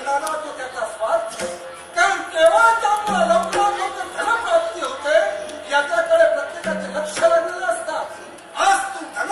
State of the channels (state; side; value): identical; both; correlation 1.00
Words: तो त्याचा स्वार्थ. कारण केव्हा त्यामुळे लवकरात लवकर धनप्राप्ती होते याच्याकडे प्रत्येकाचे लक्ष लागलेलं असतात. आज तू